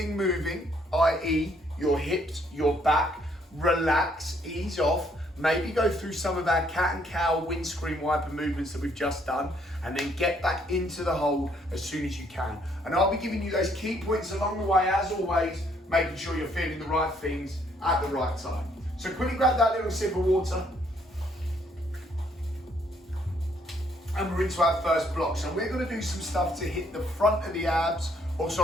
moving, i.e. your hips, your back, relax, ease off, maybe go through some of our cat and cow windscreen wiper movements that we've just done, and then get back into the hold as soon as you can. And I'll be giving you those key points along the way, as always, making sure you're feeling the right things at the right time. So quickly grab that little sip of water. And we're into our first block. So we're going to do some stuff to hit the front of the abs,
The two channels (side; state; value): both; normal; correlation 0.68